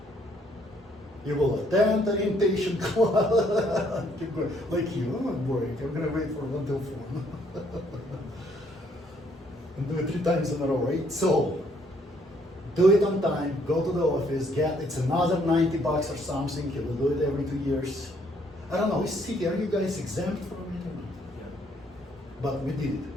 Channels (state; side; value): normal; both; correlation 0.67